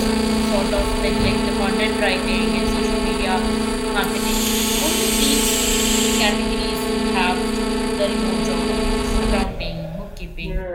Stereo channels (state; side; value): identical; both; correlation 1.00